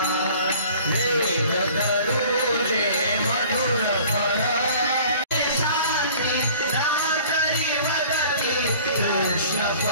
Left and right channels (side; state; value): both; inverted; correlation -0.48